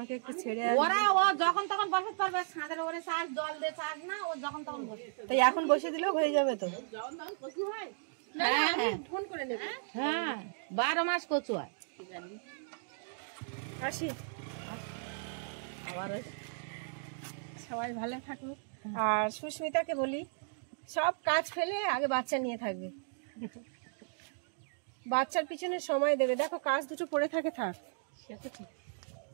একটু ছেড়ে ওরা ও যখন তখন বসতে পারবে, ছাদের উপরে চাষ জল দিয়ে চাষ না, ও যখন তখন বসে। তাই এখন বসে দিলেও হয়ে যাবে তো। হ্যাঁ ফোন করে নেব। হ্যাঁ 12 মাস কচু হয়। আসি, সবাই ভালো থাকুক। আর সুস্মিতাকে বলি, সব কাজ ফেলে আগে বাচ্চা নিয়ে থাকবে, বাচ্চার পিছনে সময় দেবে। দেখো কাজ দুটো পড়ে থাকে, থাক। সেটা ঠিক,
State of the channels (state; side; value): silent; left; digital silence